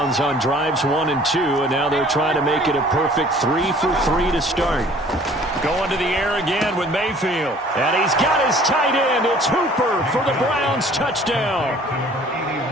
on drives 1 and 2, and now they're trying to make it a perfect 3 for 3 to start. Going to the air again with Mayfield. And he's got his tight end. It's Hooper for the Browns touchdown.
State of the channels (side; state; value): both; normal; correlation 0.52